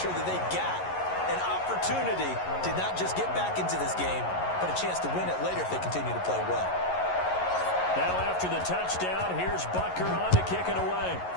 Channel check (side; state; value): right; late; 11 ms